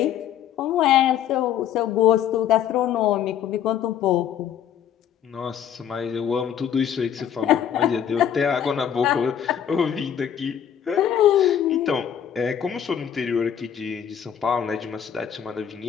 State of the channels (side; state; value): right; quieter; 9.2 dB